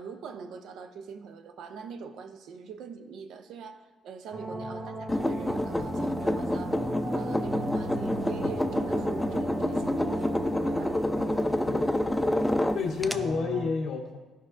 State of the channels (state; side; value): normal; both; correlation 0.90